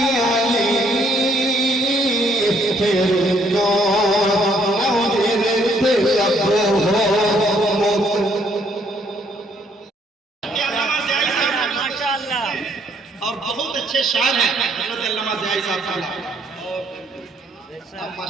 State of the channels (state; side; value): normal; both; correlation 0.67